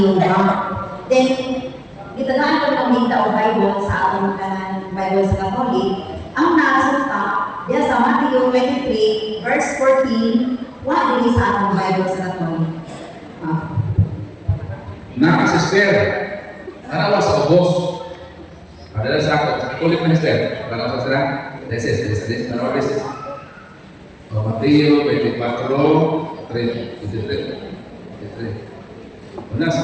Then, gitagaan ko ng Minta o Bible sa atong Bible sa Catholic. Ang naasunta, diya sa Matthew 23, verse 14, wala din sa atong Bible sa Catholic. Sister, tanawa sa ubos. Padahal sa ako, sa kulit na sister. Tanawa sa sila, deses, tanawa deses. O Mateo 24, 23. Una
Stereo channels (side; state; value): both; identical; correlation 1.00